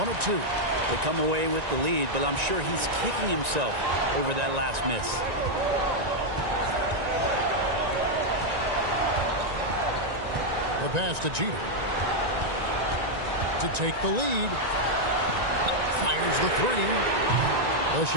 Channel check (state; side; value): late; left; 1.9 ms